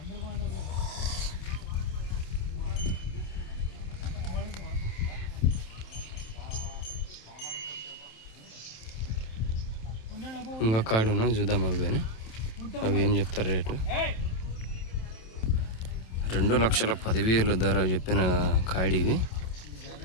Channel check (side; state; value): right; late; 27 ms